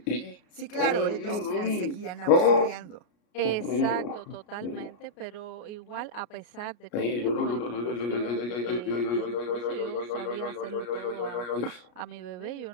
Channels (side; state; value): right; late; 33 ms